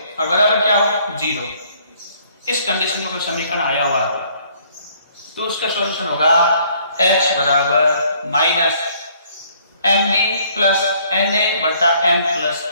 और बराबर क्या हो 0। इस कंडीशन में कोई समीकरण आया हुआ तो उसका सॉल्यूशन होगा x बराबर -mb + na बटा m +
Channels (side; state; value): both; inverted; correlation -0.62